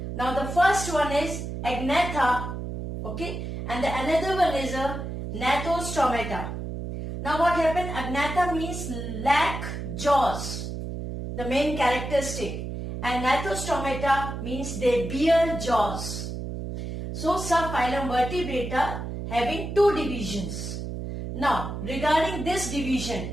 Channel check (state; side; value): noise; right; hum, 6 dB below the sound